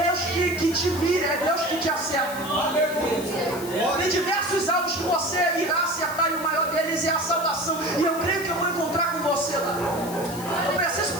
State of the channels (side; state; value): left; noise; hiss, 13 dB below the sound